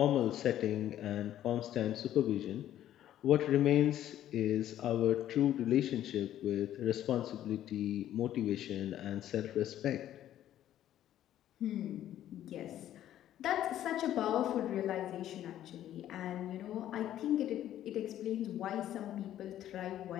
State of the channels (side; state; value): right; quieter; 12.0 dB